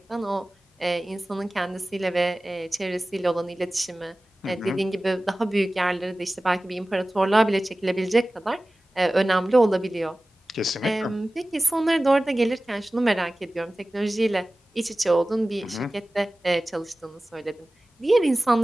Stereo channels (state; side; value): normal; both; correlation 0.97